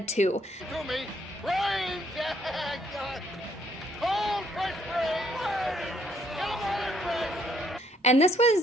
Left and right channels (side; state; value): both; normal; correlation 0.68